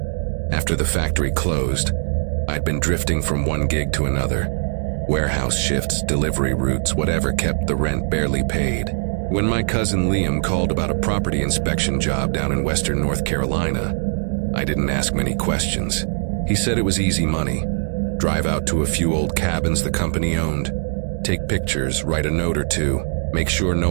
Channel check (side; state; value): left; silent; digital silence